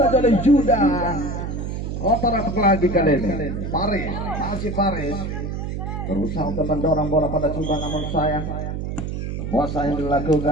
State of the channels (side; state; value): right; noise; hum, 4 dB below the sound